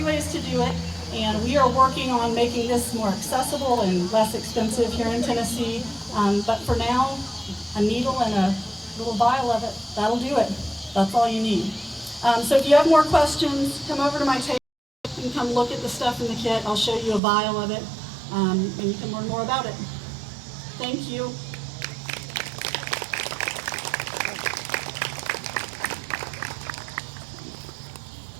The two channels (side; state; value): left; drops out; at 17.2 s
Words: ways to do it, and we are working on making this more accessible and less expensive here in Tennessee. But for now, a needle and a little vial of it, that'll do it. That's all you need. So if you have more questions, come over to my table. You can come look at the stuff in the kit. I'll show you a vial of it, and you can learn more about it. Thank you.